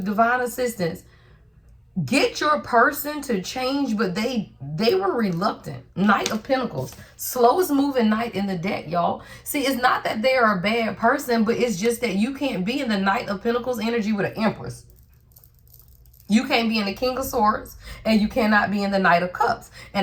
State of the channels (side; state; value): both; identical; correlation 1.00